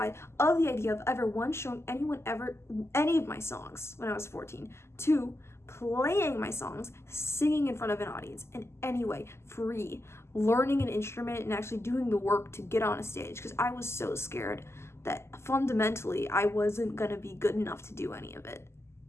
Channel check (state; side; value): late; right; 0.13 ms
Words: of the idea of ever, one, showing anyone ever any of my songs when I was 14, two, playing my songs, singing in front of an audience in any way, free, learning an instrument and actually doing the work to get on a stage, because I was so scared that fundamentally I wasn't gonna be good enough to do any of it,